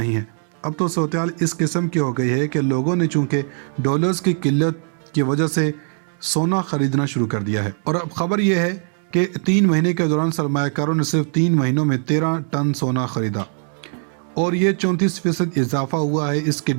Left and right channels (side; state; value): left; silent; 55 dB below the other